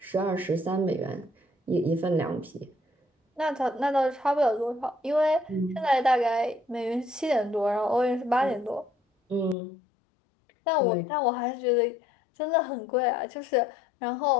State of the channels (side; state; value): right; drops out; at 9.6 s